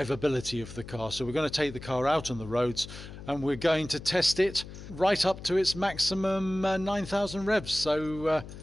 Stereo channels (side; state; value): left; noise; hum, 13 dB below the sound